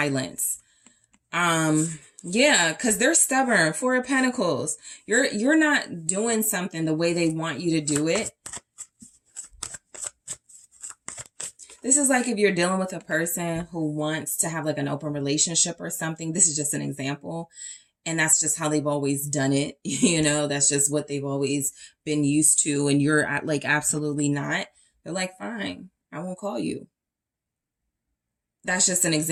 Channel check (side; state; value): both; identical; correlation 1.00